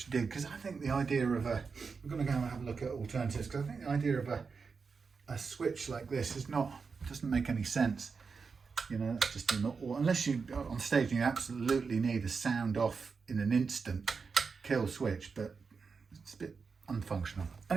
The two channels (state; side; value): quieter; left; 5.1 dB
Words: did, because I think the idea of we're going to go and have a look at alternatives, because I think the idea of a switch like this doesn't make any sense. You know, that's just unless you on stage you absolutely need a sound off in an instant kill switch, but it's a bit unfunctional.